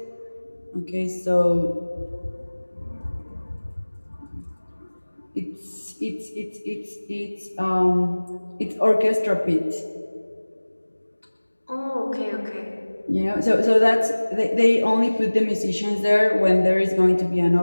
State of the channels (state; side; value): inverted; both; correlation -1.00